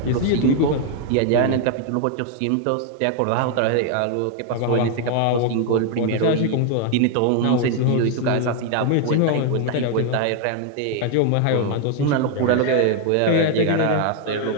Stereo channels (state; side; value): different; both; correlation 0.00